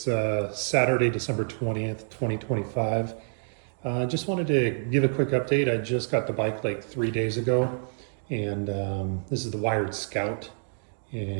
Saturday, December 20th, 2025. Just wanted to give a quick update. I just got the bike like 3 days ago, and this is the Wired Scout.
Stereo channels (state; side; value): silent; left; digital silence